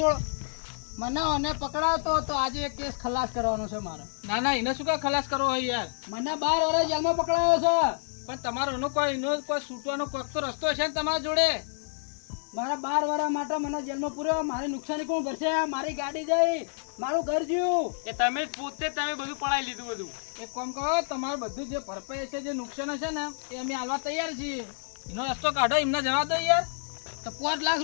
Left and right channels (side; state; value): right; silent; digital silence